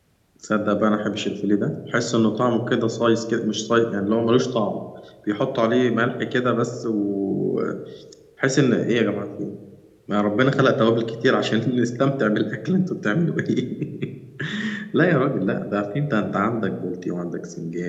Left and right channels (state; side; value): identical; both; correlation 1.00